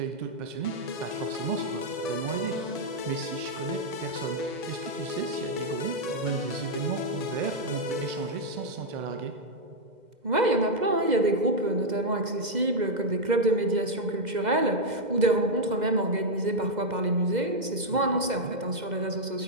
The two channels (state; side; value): late; left; 2.0 ms